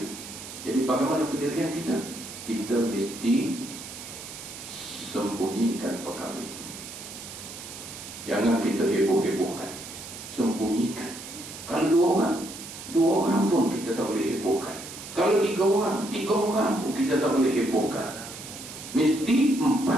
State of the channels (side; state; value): right; noise; hiss, 12 dB below the sound